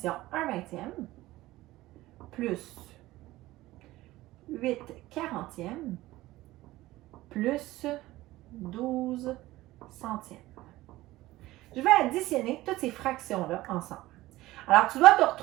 1/20 plus 8/40 plus 12/100. Je vais additionner toutes ces fractions-là ensemble. Alors, tu dois te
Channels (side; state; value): left; quieter; 17.4 dB